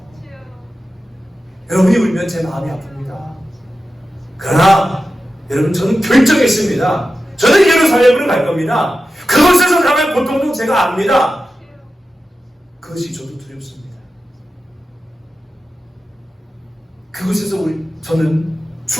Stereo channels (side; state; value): both; normal; correlation 0.92